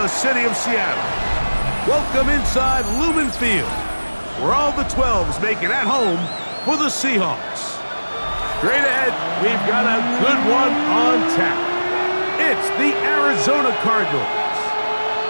city of Seattle, welcome inside Lumen Field, where all the 12s make it at home for the Seahawks. Straight ahead, we've got a good one on tap. It's the Arizona Cardinals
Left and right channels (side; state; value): both; inverted; correlation -1.00